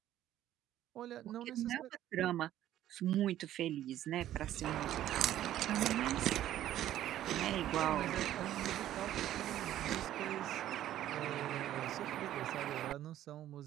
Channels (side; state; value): left; quieter; 12.6 dB